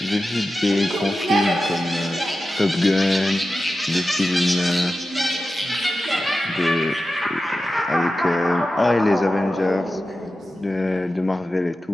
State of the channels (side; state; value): both; normal; correlation 0.93